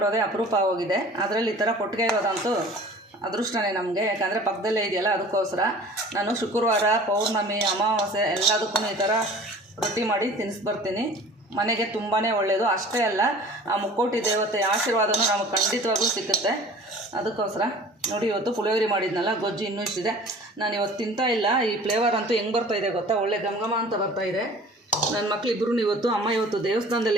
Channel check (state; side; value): normal; both; correlation 0.45